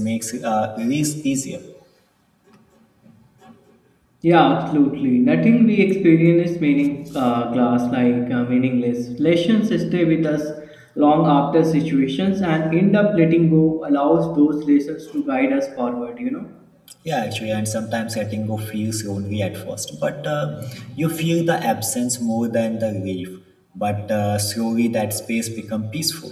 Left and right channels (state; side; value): identical; both; correlation 1.00